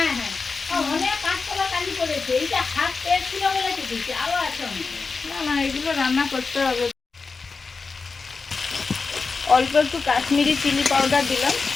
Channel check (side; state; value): right; quieter; 4.5 dB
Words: হ্যাঁ, অনেক কাঁচকলা কালি পড়েছে। এইটা হাত পেয়ে ছিল বলে কেটেছি, আরো আছে অনেক। না না, এগুলো রান্না করতে হবে। অল্প একটু কাশ্মীরি চিলি পাউডার দিলাম।